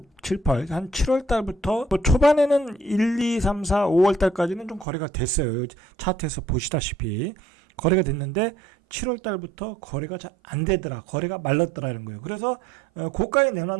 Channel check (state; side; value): drops out; left; at 4.9 s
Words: 한 7월 달부터 초반에는 1, 2, 3, 4, 5월 달까지는 좀 거래가 됐어요. 차트에서 보시다시피. 거래가 됐는데 7월 달부터 거래가 잘 안 되더라. 거래가 말랐더라는 거예요. 그래서 고가에